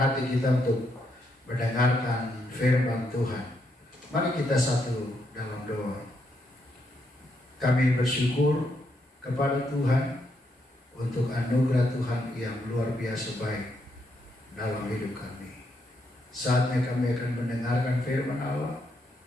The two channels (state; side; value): normal; both; correlation 0.78